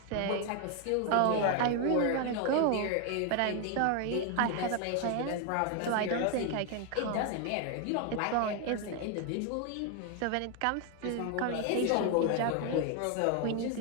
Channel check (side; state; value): both; different; correlation 0.01